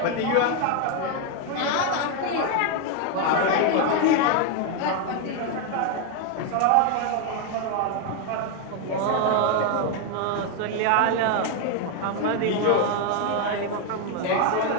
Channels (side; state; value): both; different; correlation 0.01